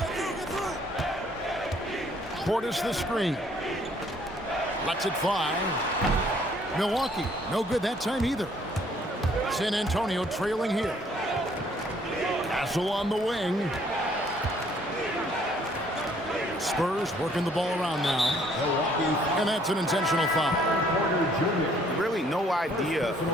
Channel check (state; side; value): normal; both; correlation 0.63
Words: Portis the screen. Lets it fly. Milwaukee, no good that time either. San Antonio trailing here. Castle on the wing. Spurs working the ball around now. And that's an intentional foul. Really no idea